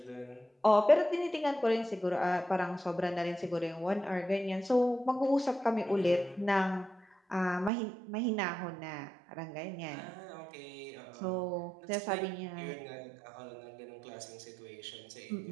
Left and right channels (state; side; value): drops out; left; at 7.7 s